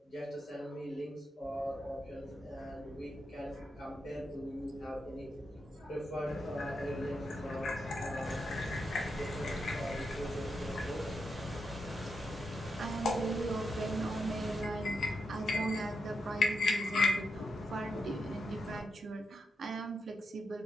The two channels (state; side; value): normal; both; correlation 0.84